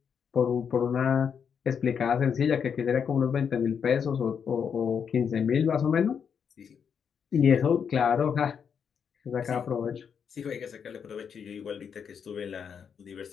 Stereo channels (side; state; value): right; quieter; 7.1 dB